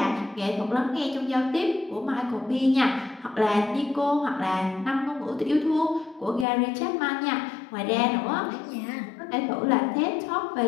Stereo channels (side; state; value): right; drops out; at 6.5 s